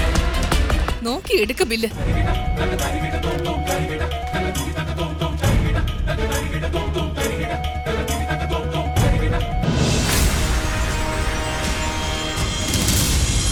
നോക്കി എടുക്ക ബില്ല്.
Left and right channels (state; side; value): identical; both; correlation 1.00